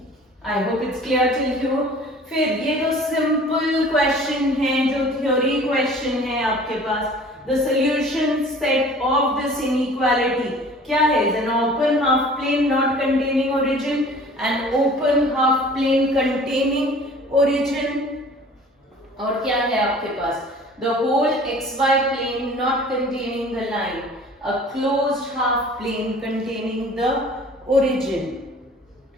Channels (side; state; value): both; normal; correlation 0.47